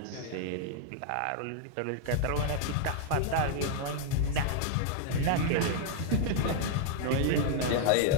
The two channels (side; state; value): both; different; correlation 0.00